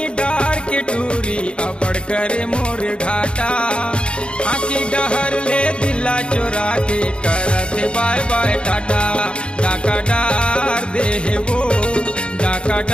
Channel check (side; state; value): right; late; 0.056 ms